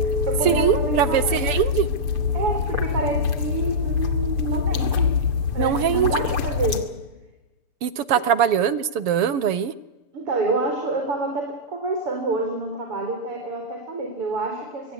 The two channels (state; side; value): late; left; 7.1 ms